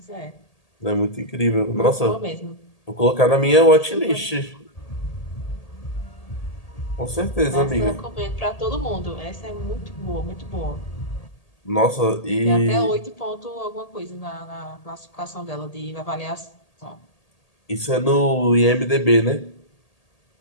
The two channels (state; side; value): late; right; 1.8 ms